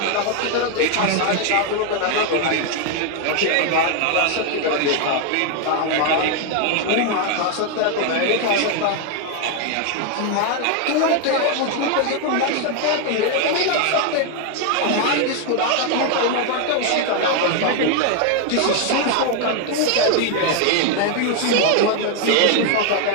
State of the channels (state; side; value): different; both; correlation 0.01